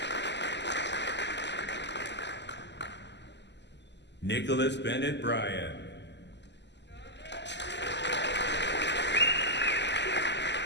Nicholas Bennett Bryan.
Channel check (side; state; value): right; late; 0.51 ms